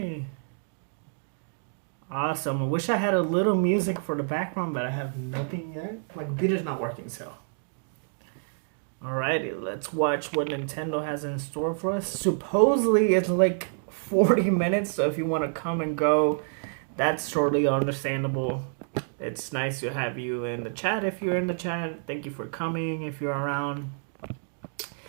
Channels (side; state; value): left; silent; digital silence